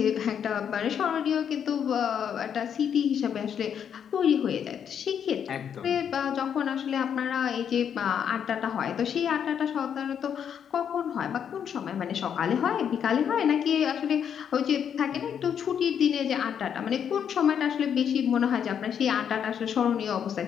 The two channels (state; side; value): quieter; right; 8.2 dB